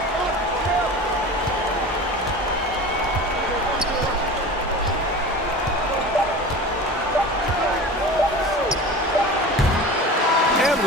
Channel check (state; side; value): normal; both; correlation 0.34